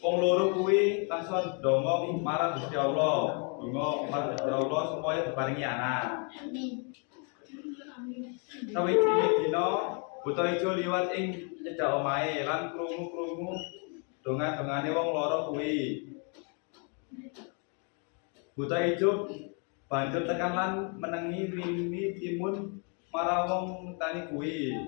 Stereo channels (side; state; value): right; quieter; 38.2 dB